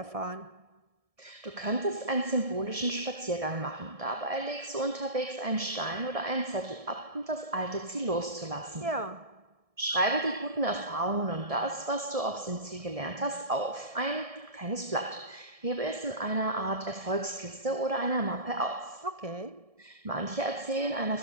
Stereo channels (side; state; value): left; late; 1.7 ms